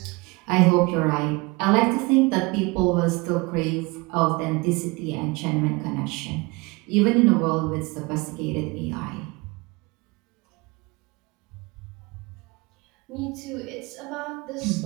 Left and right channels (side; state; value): left; quieter; 25.6 dB